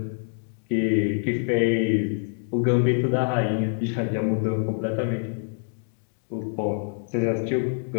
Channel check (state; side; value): silent; right; digital silence